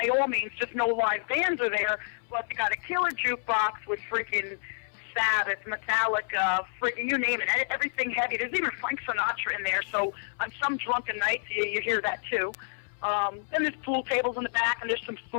all means. Just no live bands are there, but they got a killer jukebox with freaking Sabbath, Metallica, freaking you name it, everything heavy. There's even Frank Sinatra in there, so on some drunken nights you hear that too. Then there's pool tables in the back, and there's some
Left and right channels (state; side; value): silent; right; 59 dB below the other